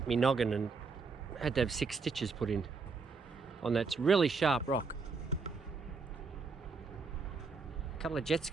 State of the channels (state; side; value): quieter; left; 4.6 dB